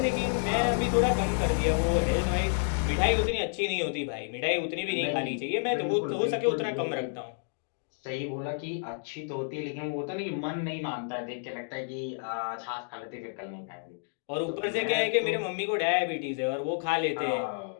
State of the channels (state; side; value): silent; right; digital silence